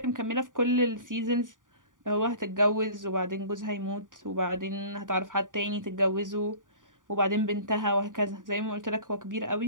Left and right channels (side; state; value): left; late; 0.88 ms